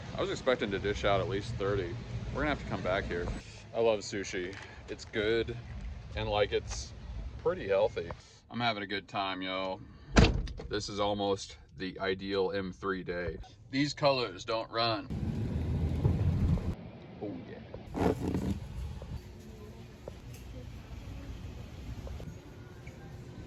I was expecting to dish out at least 30. We're gonna have to come back here. I love sushi. It's good and like it's pretty healthy. I'm having a good time, yo. This is almost the ideal M3 day. These colors don't run. Oh yeah.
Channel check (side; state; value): both; identical; correlation 1.00